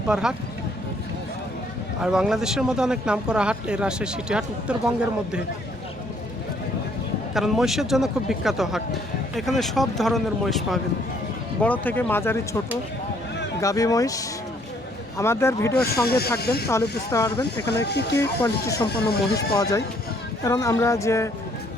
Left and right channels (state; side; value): normal; both; correlation 0.65